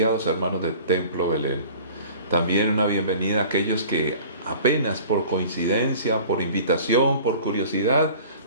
hermanos de Templo Belén. También una bienvenida a aquellos que apenas por coincidencia, por invitación, por curiosidad,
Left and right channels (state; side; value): inverted; both; correlation -0.45